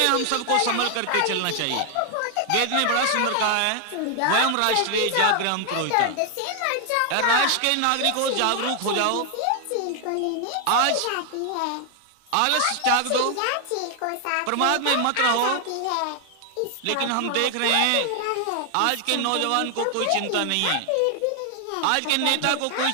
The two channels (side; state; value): both; different; correlation 0.00